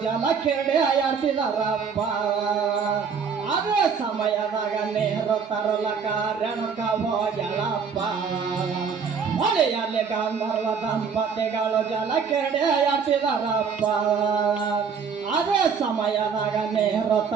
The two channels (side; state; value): left; quieter; 6.1 dB